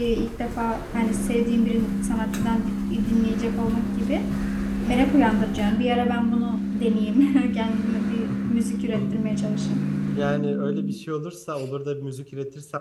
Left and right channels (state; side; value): identical; both; correlation 1.00